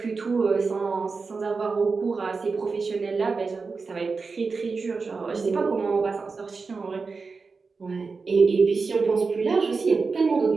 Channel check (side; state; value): left; quieter; 4.5 dB